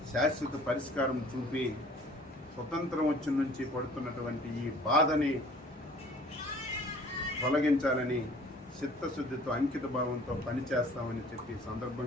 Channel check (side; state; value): both; normal; correlation 0.51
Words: శాశ్వత పరిష్కారం చూపి స్వతంత్రం వచ్చిన నుంచి పడుతున్నటువంటి ఈ బాధని తొలగించాలని చిత్తశుద్ధితో అంకిత భావంతో పనిచేస్తామని చెప్పి